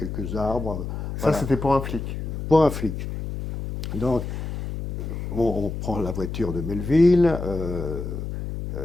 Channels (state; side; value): noise; left; hum, 5 dB below the sound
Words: arbres. Ça, c'était pour un flic. Pour un flic. Donc, on prend la voiture de Melville,